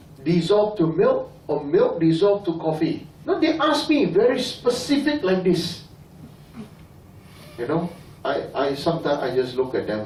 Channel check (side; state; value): both; identical; correlation 1.00